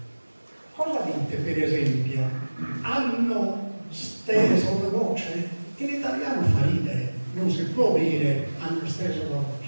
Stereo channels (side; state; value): both; inverted; correlation -1.00